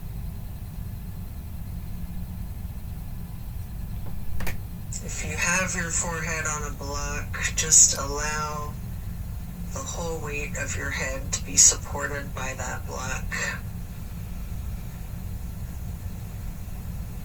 forehead on a block, just allow the whole weight of your head to be supported by that block.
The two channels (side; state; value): both; identical; correlation 1.00